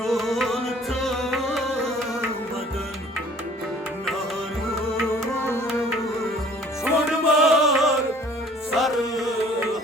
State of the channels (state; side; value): normal; both; correlation 0.53